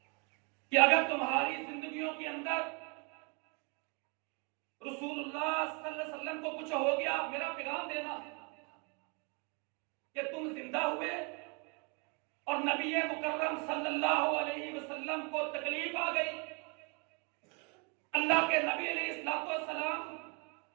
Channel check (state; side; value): quieter; left; 33.7 dB